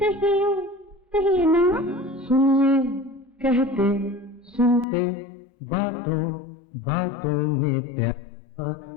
कहिए कहिए ना। सुनिए कहते सुनते बातों बातों में प्यार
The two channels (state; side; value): drops out; right; at 4.9 s